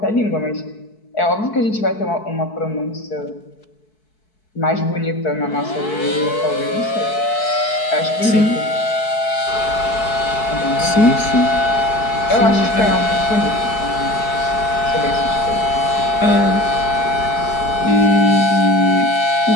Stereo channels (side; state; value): right; late; 4.6 ms